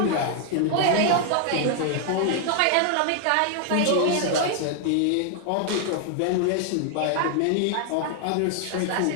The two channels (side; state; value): both; different; correlation 0.00